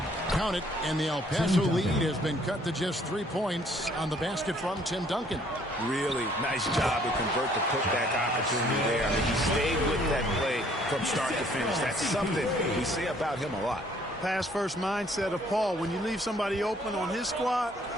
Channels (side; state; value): both; normal; correlation 0.62